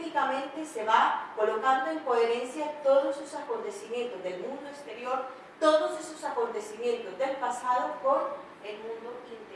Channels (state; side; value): identical; both; correlation 1.00